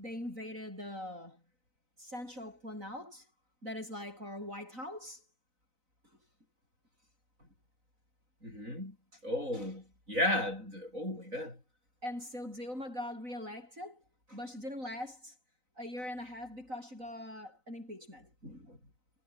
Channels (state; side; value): late; left; 3.9 ms